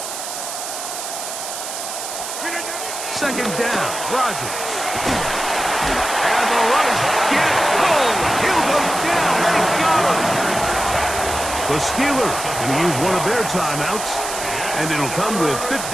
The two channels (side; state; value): right; noise; hiss, 7 dB below the sound